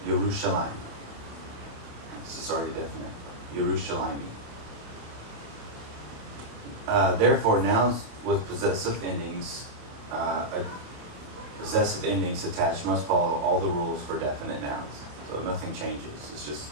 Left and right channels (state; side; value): late; left; 28 ms